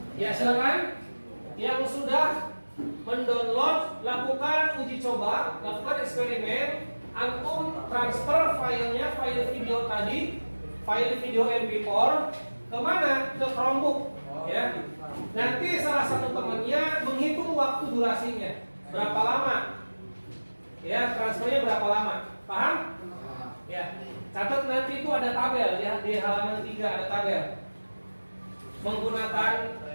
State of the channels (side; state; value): both; inverted; correlation -1.00